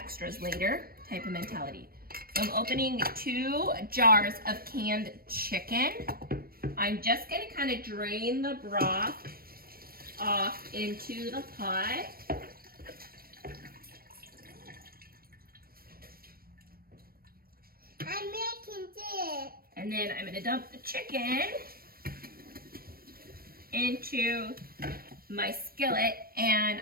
later type of mentality. So I'm opening 2 jars of canned chicken. I'm just going to kind of drain the broth off into the pot. I'm making this. And then I'm going to dump the chicken into my skillet, and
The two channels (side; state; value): left; late; 0.44 ms